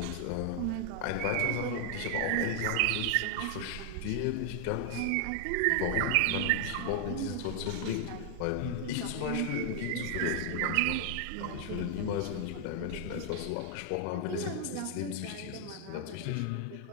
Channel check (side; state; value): both; different; correlation 0.00